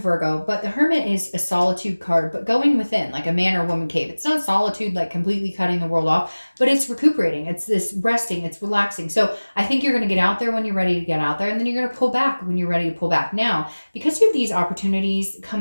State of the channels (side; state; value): both; inverted; correlation -1.00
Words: but the Hermit is a solitude card, but going within, like a man or woman cave. It's not solitude, like completely cutting the world off, but it's recuperating. It's this resting. It's relaxing. So I think you're going to get out there when you're ready to get out there, and then you're going to pull back when you're ready to pull back. Now, because you have these opportunities